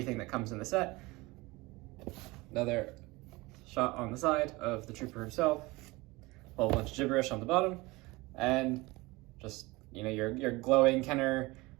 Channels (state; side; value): quieter; left; 22.3 dB